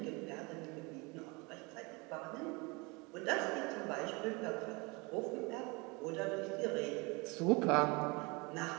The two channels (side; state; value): left; quieter; 27.3 dB